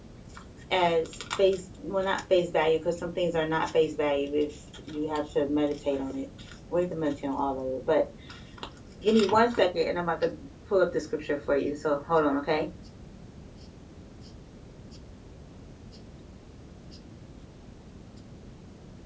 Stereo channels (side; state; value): both; identical; correlation 1.00